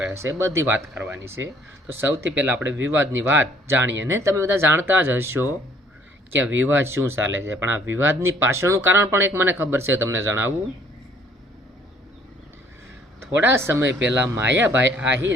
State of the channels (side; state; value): both; normal; correlation 0.60